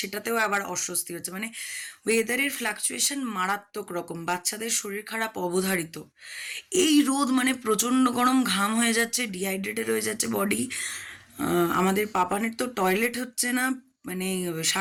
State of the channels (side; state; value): both; identical; correlation 1.00